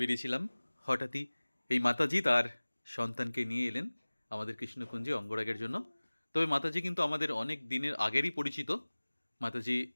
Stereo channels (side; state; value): both; inverted; correlation -1.00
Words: হঠাৎই এই মাতাজি তার সন্তানকে নিয়ে এলেন আমাদের কৃষ্ণকুঞ্জে অঙ্গরাগের জন্য। তবে মাতাজি কিন্তু আমাদের অনেক দিনের আগেরই পরিচিত। মাতাজি